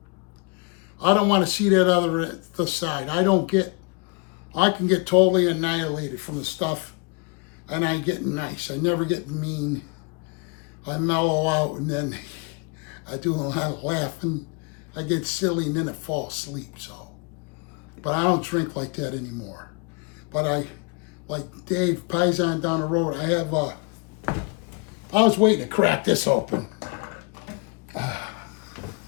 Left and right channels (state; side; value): quieter; right; 31.7 dB